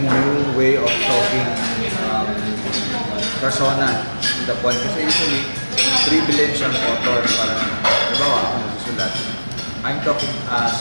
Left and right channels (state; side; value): inverted; both; correlation -1.00